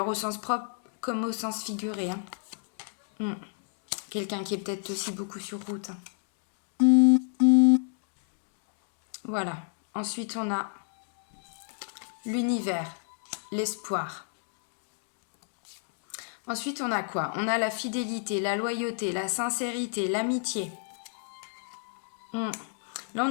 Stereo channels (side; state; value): right; silent; digital silence